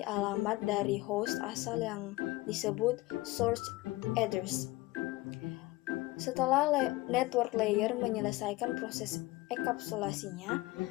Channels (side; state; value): right; quieter; 20.5 dB